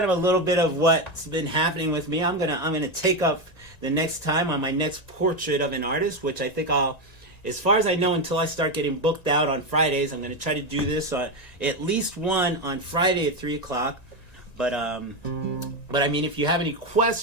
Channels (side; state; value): right; late; 1.9 ms